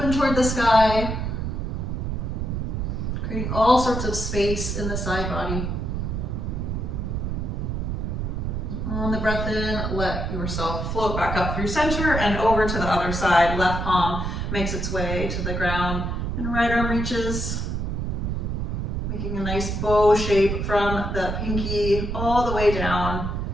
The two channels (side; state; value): right; noise; rumble, 2 dB below the sound